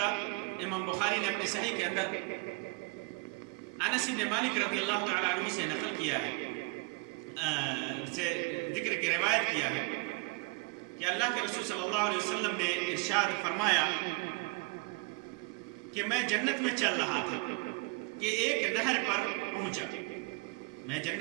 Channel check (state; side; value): quieter; left; 28.1 dB